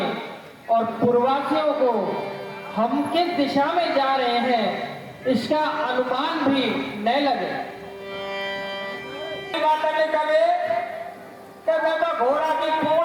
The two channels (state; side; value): identical; both; correlation 1.00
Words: और पूर्ववासियों को हम किस दिशा में जा रहे हैं इसका अनुमान भी न लगे। बात नहीं करे कि मैं तो घोड़ा की